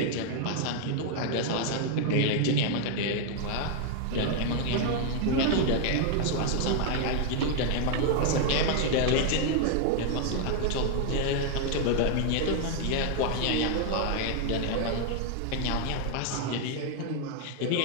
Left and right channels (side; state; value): both; different; correlation 0.00